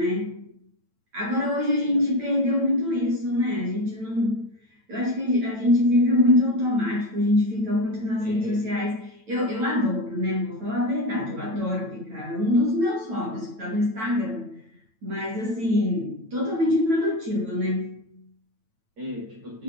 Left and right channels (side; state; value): left; late; 9.0 ms